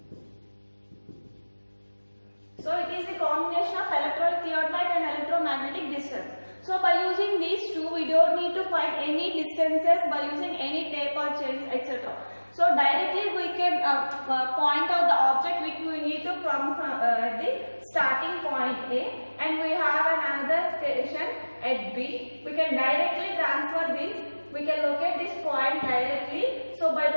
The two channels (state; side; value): inverted; both; correlation -1.00